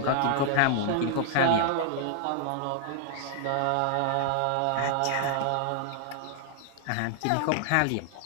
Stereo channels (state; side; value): different; both; correlation 0.00